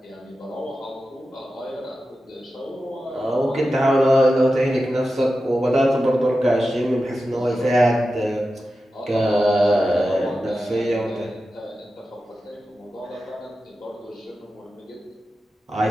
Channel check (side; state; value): both; normal; correlation 0.92